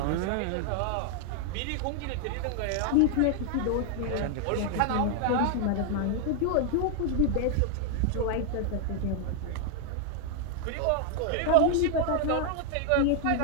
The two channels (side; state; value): both; different; correlation 0.00